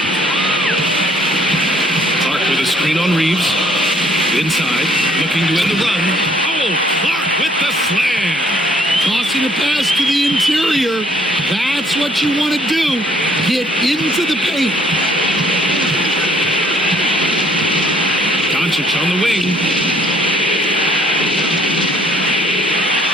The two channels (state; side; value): normal; both; correlation 0.62